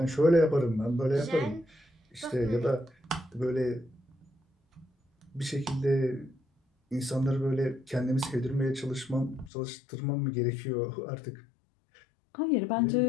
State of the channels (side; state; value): right; drops out; at 9.5 s